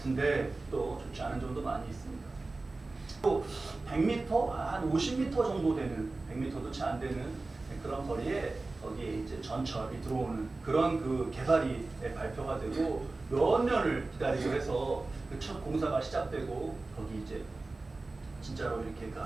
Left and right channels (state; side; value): quieter; left; 3.4 dB